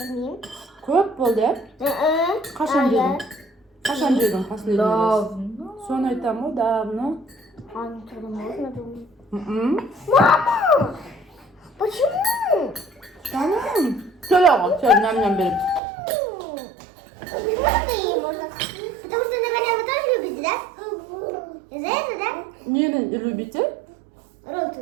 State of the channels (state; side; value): drops out; left; at 15.8 s